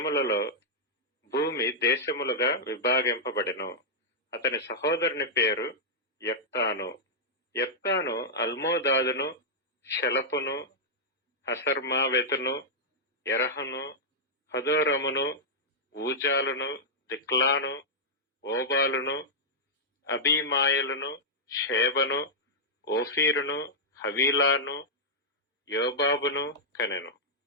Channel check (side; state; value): both; normal; correlation -0.07